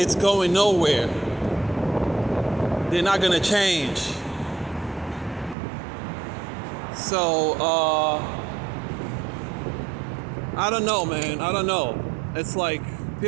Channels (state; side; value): drops out; left; at 5.6 s